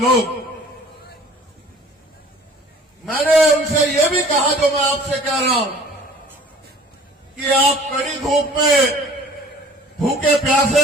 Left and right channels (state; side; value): normal; both; correlation 0.49